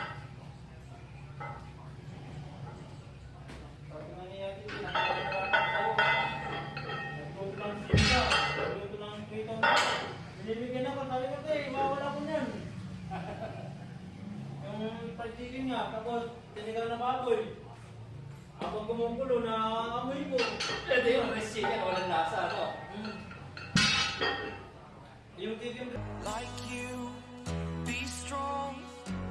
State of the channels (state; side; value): identical; both; correlation 1.00